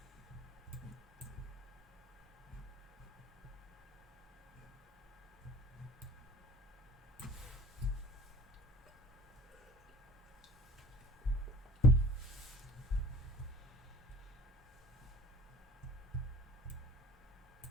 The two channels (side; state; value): both; normal; correlation 0.46